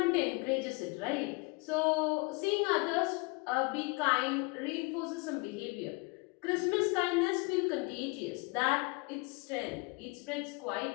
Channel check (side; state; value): right; quieter; 28.3 dB